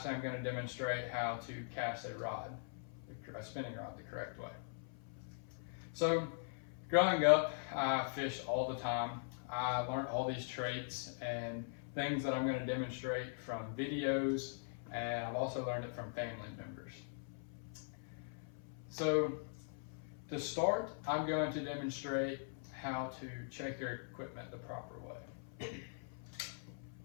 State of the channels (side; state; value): right; silent; 50 dB below the other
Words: I'm going to demonstrate how to cast a rod, a spinning rod, the correct way. So, growing up, I fished all the time. I learned all these traits and things that I'm going to demonstrate from videos, and I've also learned it from family members. So, to start, I'm going to demonstrate how to check your equipment the proper way.